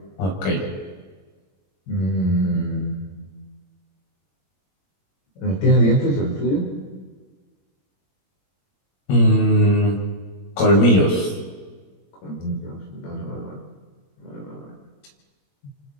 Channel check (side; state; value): right; late; 21 ms